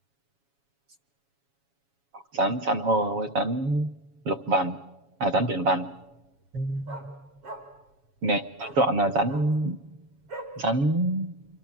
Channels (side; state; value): left; late; 7.2 ms